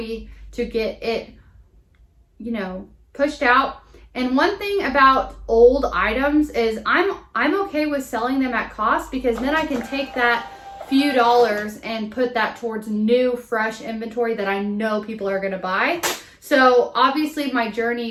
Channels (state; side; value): identical; both; correlation 1.00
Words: to get it, you know, pushed out. And one thing about old items is I'm okay with selling them at cost, because then I can take that few dollars and put that towards new fresh inventory that I know people are going to buy. So obviously my